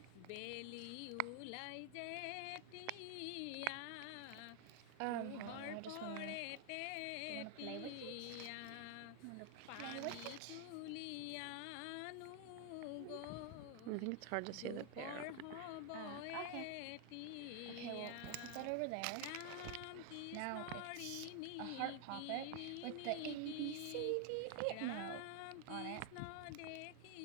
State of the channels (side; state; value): both; different; correlation 0.00